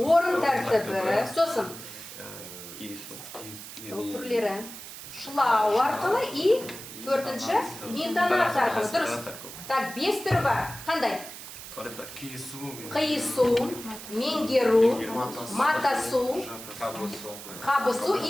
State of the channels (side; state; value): right; noise; hiss, 12 dB below the sound